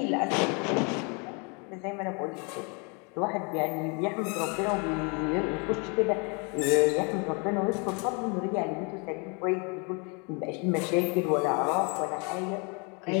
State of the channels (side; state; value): right; quieter; 33.2 dB